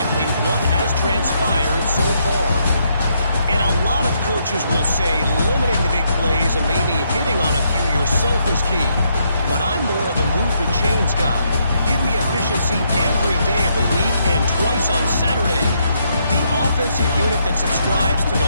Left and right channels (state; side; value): inverted; both; correlation -0.75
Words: what has transpired so far. And a lot of coaches will say limiting the big plays and maybe hitting on a few yourself is key. But I'm more of a move the chains guy. Give me efficiency every day of the week and twice on Saturday. The offensive unit that subscribes to